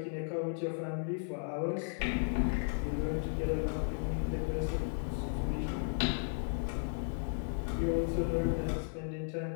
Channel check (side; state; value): right; silent; 54 dB below the other